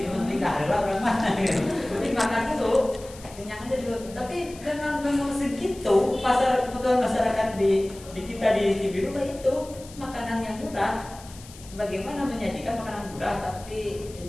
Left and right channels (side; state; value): left; noise; hiss, 19 dB below the sound